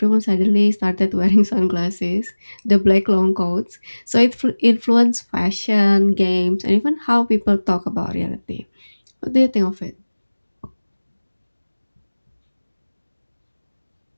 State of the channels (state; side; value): inverted; both; correlation -1.00